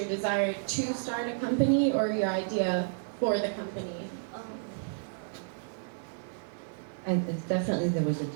desire to start a company or your idea for the company? And definitely there was a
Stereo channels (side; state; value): left; silent; 57 dB below the other